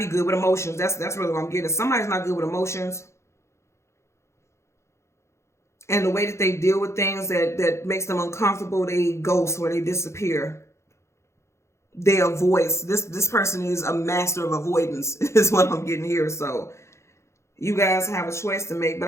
good with emotions. That's really what I'm getting. Somebody's not good with emotions. And the way that they deal with things that makes them uncomfortable, they ghost or they disappear. They avoid. This person is a master of avoidance, is what I'm getting here. So you guys have a choice to make. But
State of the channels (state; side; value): late; right; 0.13 ms